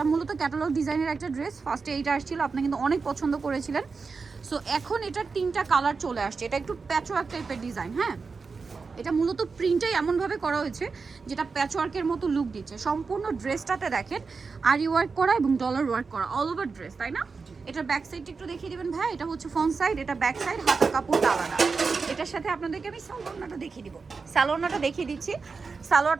মূলত ক্যাটালগ ডিজাইনের একটা ড্রেস, ফার্স্টে এইটা আসছিল, আপনি কিন্তু অনেক পছন্দ করেছিলেন। সো এখন এটার তিনটা কালার চলে আসছে। এটা একটু প্যাচওয়ার্ক টাইপের ডিজাইন, হ্যাঁ, এটা মূলত প্রিন্টটাই এমনভাবে করা হয়েছে যেটা প্যাচওয়ার্কের মতো লুক দিচ্ছে। সম্পূর্ণ ড্রেসটাতে দেখেন আরি ওয়ার্ক করা এবং ডলার ওয়ার্ক করা, অল ওভার ড্রেস, তাই না? এটার ব্যাক সাইডটা একটু দেখিয়ে দিবেন ভাই। এটা হচ্ছে ফ্রন্ট সাইড, এটা ব্যাক সাইড, হাতের কাপড়টা আলাদা। এটার সাথে আপনাদেরকে আমি সালোয়ারটা দেখিয়ে দিব। সালোয়ারটা দেখিয়ে দিচ্ছি।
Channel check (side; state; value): left; quieter; 4.7 dB